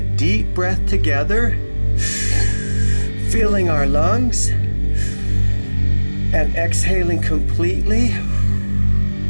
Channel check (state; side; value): inverted; both; correlation -1.00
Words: breath together, filling our lungs and exhaling completely.